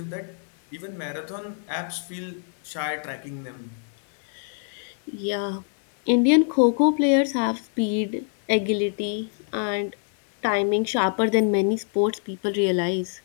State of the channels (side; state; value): right; silent; 61 dB below the other